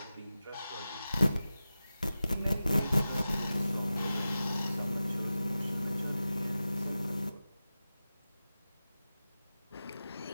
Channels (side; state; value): both; inverted; correlation -0.94